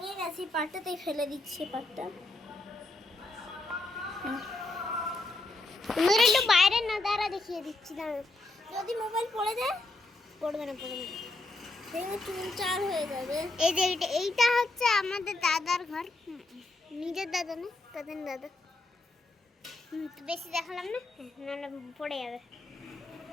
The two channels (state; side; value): quieter; right; 3.0 dB